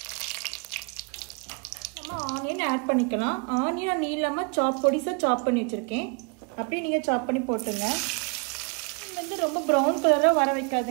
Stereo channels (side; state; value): left; quieter; 34.3 dB